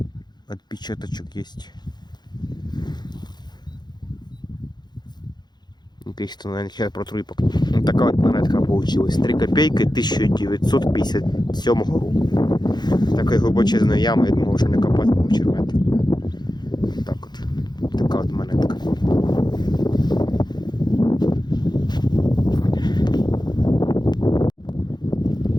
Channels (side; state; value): right; late; 0.21 ms